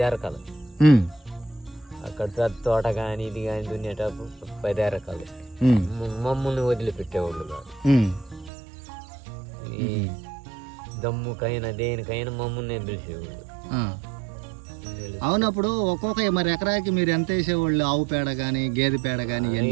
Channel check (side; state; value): left; drops out; at 8.5 s